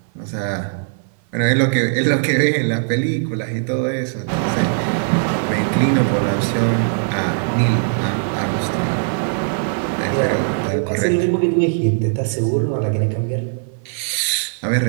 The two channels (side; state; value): left; silent; 57 dB below the other